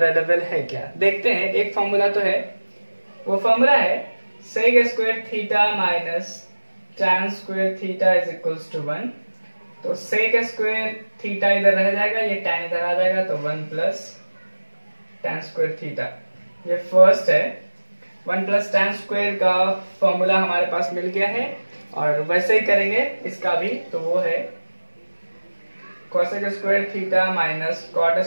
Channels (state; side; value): inverted; both; correlation -1.00